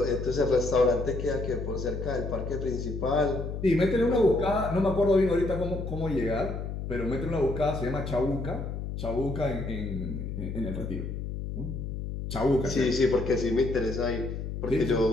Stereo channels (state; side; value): noise; left; hum, 5 dB below the sound